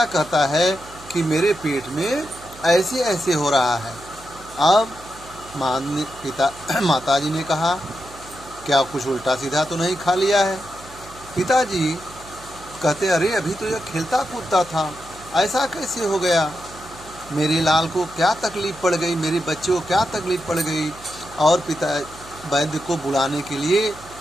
कहता है कि मेरे पेट में ऐसे ऐसे हो रहा है। अब माताजी ने कहा, क्या कुछ उल्टा सीधा तो नहीं खा लिया है? पिताजी कहते, अरे अभी तो यह खेलता कूदता था, ऐसा कैसे हो गया? मेरे लाल को क्या तकलीफ़ पड़ गई, मेरे बच्चे को क्या तकलीफ़ पड़ गई? और पिता वैद्य को बुलाने के लिए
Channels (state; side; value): noise; right; hum, 20 dB below the sound